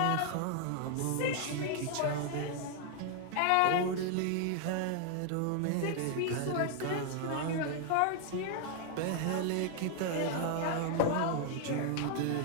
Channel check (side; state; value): both; different; correlation 0.00